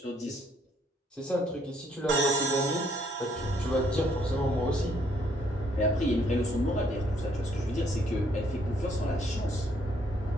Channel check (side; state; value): both; normal; correlation 0.68